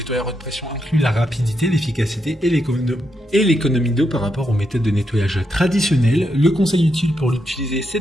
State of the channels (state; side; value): normal; both; correlation 0.82